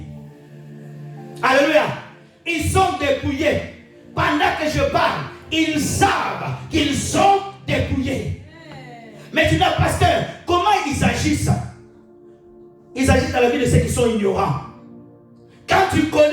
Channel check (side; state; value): both; identical; correlation 1.00